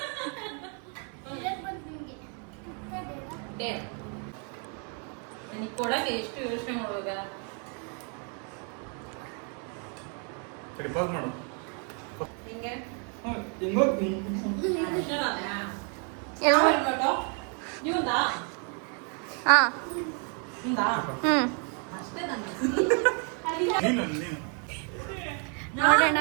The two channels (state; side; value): quieter; left; 39.9 dB